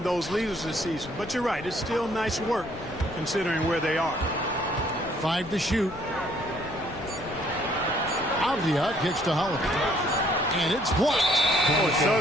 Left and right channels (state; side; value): noise; left; rumble, 17 dB below the sound